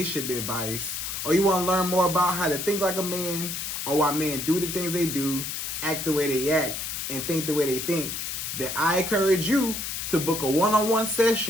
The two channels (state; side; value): noise; left; hiss, 4 dB below the sound